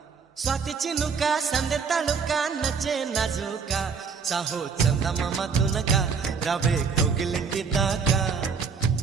స్వాతి చినుక సందె తలుక నచ్చే నాజుక సాహో చందమామ తునక రావే కోగిలింటి దాకా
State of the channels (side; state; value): left; quieter; 5.6 dB